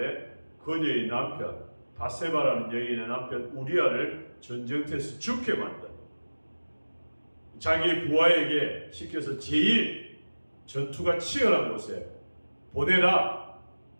그녀의 남편, 바세바라는 여인의 남편 우리아를 전쟁터에서 죽게 만든, 자기 부하에게 시켜서 제일 전투가 치열한 곳에 보내라,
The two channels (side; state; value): both; inverted; correlation -1.00